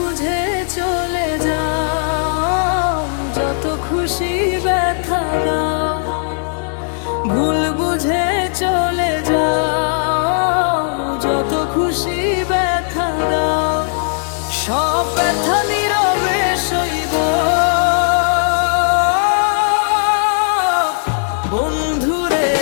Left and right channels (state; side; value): silent; right; digital silence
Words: চলে যাও, যত খুশি ব্যথা দাও। ভুল বুঝে চলে যাও, যত খুশি ব্যথা দাও। সব ব্যথা নীরবে সইব বন্ধুরে,